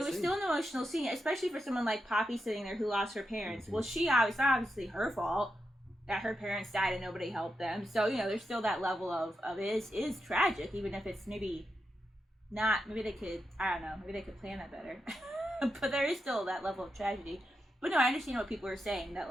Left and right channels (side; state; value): both; normal; correlation 0.87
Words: It was still an emotional scene, especially for someone like Poppy sitting there who lost her parents. Well, it's obviously her fault that her parents died and nobody helped them. So, there's still that level of it is tragic, even if it's maybe not, maybe they could, I don't know, maybe they could plan that better. But there is still that level of tragedy. But no, I understand what people are saying, that,